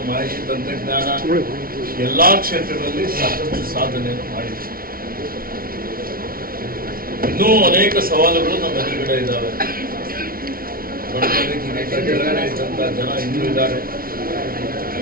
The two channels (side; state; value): left; late; 0.43 ms